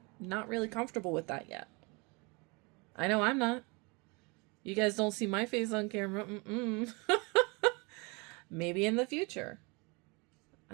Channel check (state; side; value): quieter; left; 29.1 dB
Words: not really comfortable with that yet. I know I'm not. You guys don't see my face on camera. Maybe in the future.